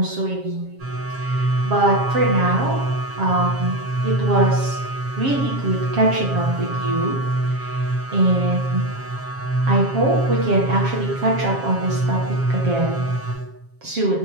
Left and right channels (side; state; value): left; late; 7.4 ms